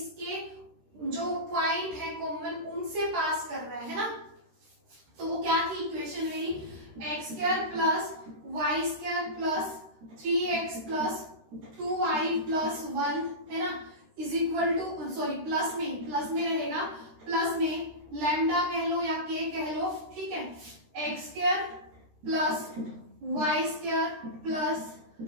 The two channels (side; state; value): left; late; 13 ms